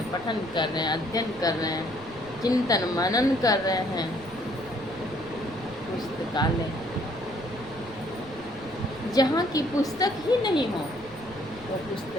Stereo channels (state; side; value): noise; right; rumble, 20 dB below the sound